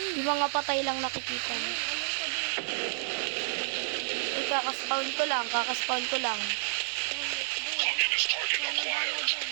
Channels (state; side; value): silent; left; 58 dB below the other